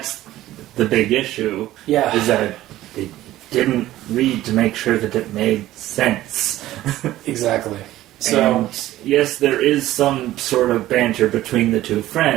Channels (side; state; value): left; quieter; 15.0 dB